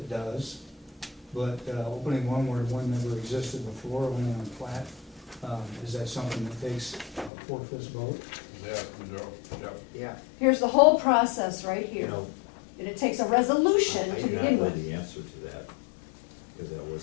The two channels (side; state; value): right; drops out; at 7.3 s